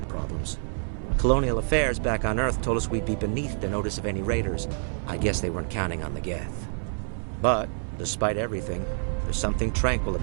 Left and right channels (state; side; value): silent; left; 60 dB below the other